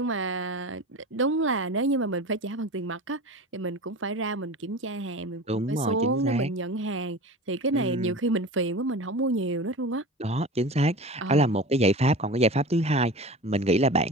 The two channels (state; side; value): normal; both; correlation 0.33